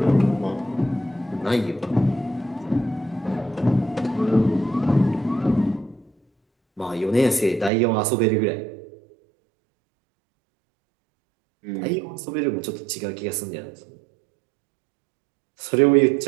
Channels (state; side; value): drops out; left; at 7.7 s